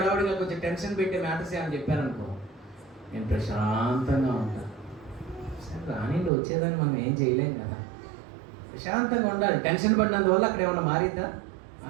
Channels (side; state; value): left; drops out; at 6.3 s